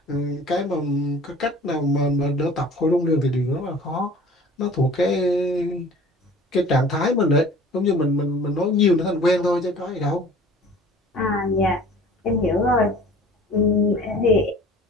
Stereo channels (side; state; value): both; normal; correlation 0.47